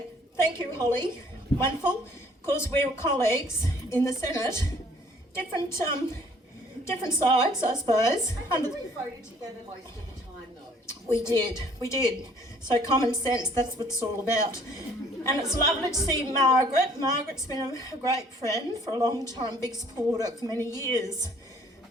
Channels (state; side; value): normal; both; correlation 0.58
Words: Thank you, Holly. Wonderful. Of course, we're colleagues in the Senate. Different sides, I suppose. We voted together most of the time, though. We did. So common sense, that's what it's all about. And it's lovely to see Margaret. Margaret's been a great friend for a long time, big supporter for many years.